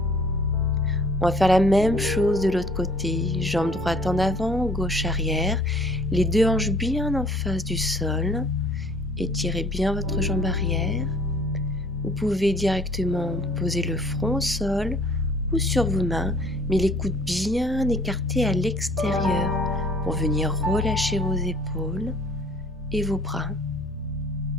On va faire la même chose de l'autre côté. Jambe droite en avant, gauche arrière. Les deux hanches bien en face du sol. Étirez bien votre jambe arrière. Vous pouvez directement poser le front au sol ou sur vos mains, mais les coudes bien écartés à l'extérieur pour venir relâcher vos épaules et vos bras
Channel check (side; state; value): both; normal; correlation 0.54